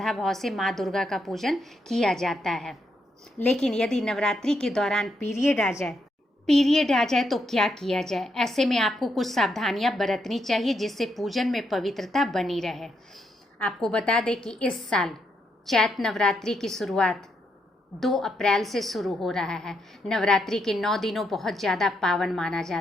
भाव से माँ दुर्गा का पूजन किया जाता है। लेकिन यदि नवरात्रि के दौरान पीरियड आ जाए तो क्या किया जाए? ऐसे में आपको कुछ सावधानियां बरतनी चाहिए जिससे पूजन में पवित्रता बनी रहे। आपको बता दें कि इस साल चैत नवरात्रि की शुरुआत 2 अप्रैल से शुरू हो रहा है। नवरात्रि के 9 दिनों बहुत ज़्यादा पावन माना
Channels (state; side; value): normal; both; correlation 0.79